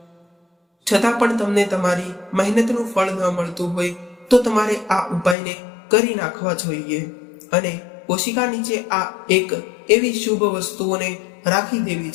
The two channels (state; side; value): drops out; right; at 5.4 s